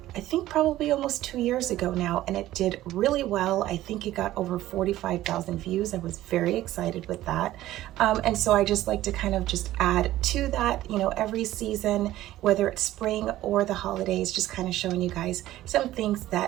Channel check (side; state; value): left; quieter; 14.8 dB